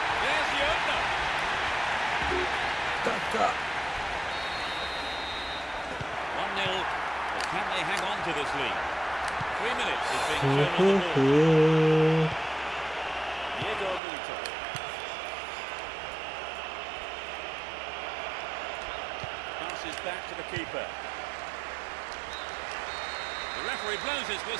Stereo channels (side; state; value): left; drops out; at 14.0 s